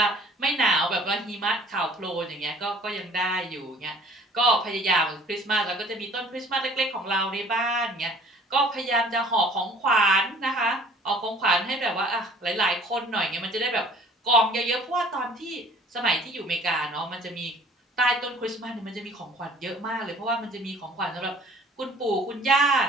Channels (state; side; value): normal; both; correlation 0.52